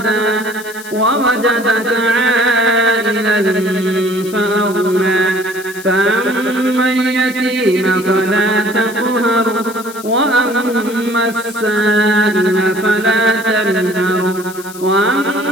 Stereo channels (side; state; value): left; noise; hiss, 17 dB below the sound